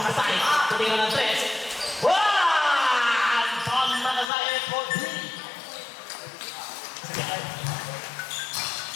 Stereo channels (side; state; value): right; drops out; at 4.2 s